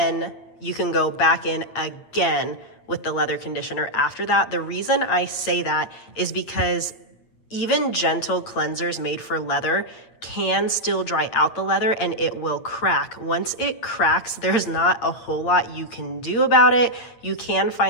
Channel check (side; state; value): right; late; 8.7 ms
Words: you can go back in again with the leather conditioner after that. The reason I say that is because even gentle cleansers made for leather can still dry out the leather and it will crack. Once it cracks, there's not a whole lot you can do about it. You can